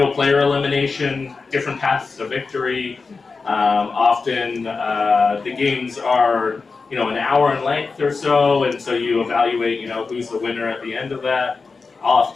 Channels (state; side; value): quieter; right; 4.4 dB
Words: player elimination, different paths to victory. Often the games are, an hour in length or so, and so you evaluate, who's the winner at the end of that.